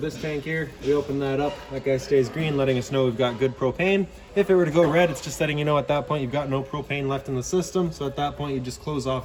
tank here. We open that up, that guy stays green, letting us know we've got good propane. If it were to go red, it's just letting you know at that point you've got no propane left in the system. So at that point you just close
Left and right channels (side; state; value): both; identical; correlation 1.00